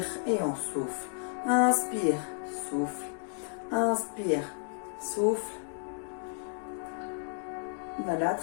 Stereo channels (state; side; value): silent; right; 56 dB below the other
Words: et on souffle. Inspire, souffle. Inspire, souffle. Voilà,